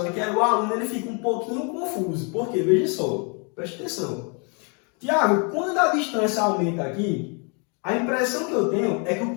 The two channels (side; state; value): right; quieter; 35.9 dB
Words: aqui, o aluno ele fica um pouquinho confuso. Por quê? Veja só, preste atenção. Tiago, quando a distância aumenta aqui, a impressão que eu tenho é que o